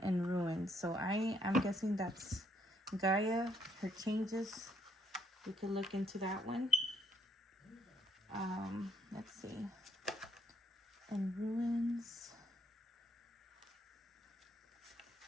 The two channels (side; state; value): both; normal; correlation 0.70